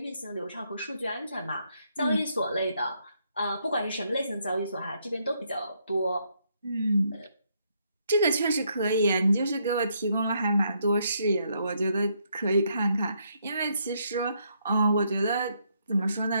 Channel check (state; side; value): inverted; both; correlation -0.74